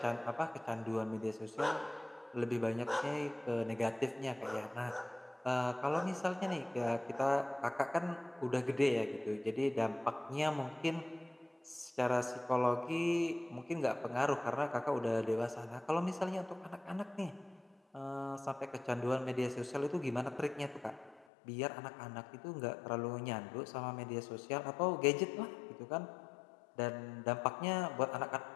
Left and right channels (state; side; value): drops out; right; at 21.2 s